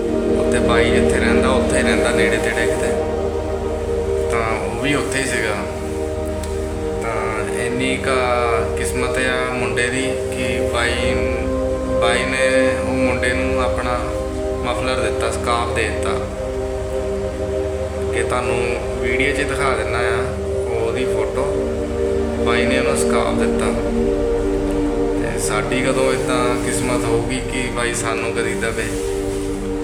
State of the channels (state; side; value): identical; both; correlation 1.00